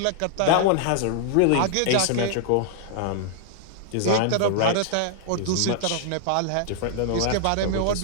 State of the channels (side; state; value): both; different; correlation -0.01